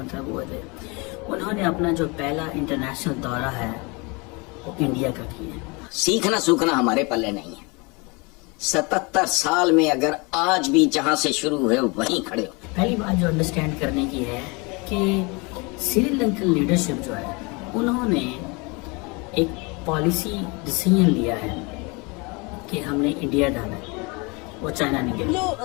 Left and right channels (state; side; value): quieter; right; 28.5 dB